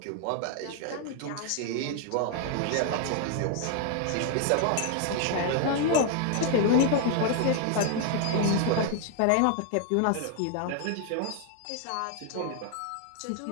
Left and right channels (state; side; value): different; both; correlation 0.00